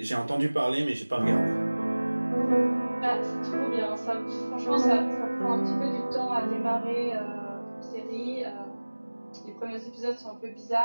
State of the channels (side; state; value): both; inverted; correlation -1.00